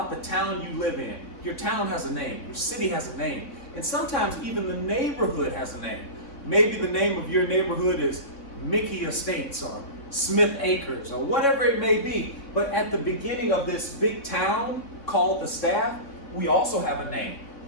the town you live in, your town has a name, your city has a name, and sometimes even the neighborhood has a name. Maybe the name of your neighborhood is Mickey Estates or Smith Acres or whatever it may be. But at the beginning of this big town called the staff, we also have a name.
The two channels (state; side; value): late; right; 3.6 ms